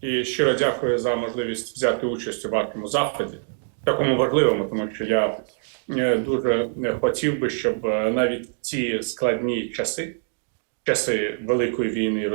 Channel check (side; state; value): left; silent; 63 dB below the other